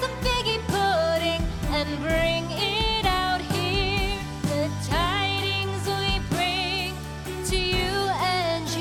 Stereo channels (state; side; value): identical; both; correlation 1.00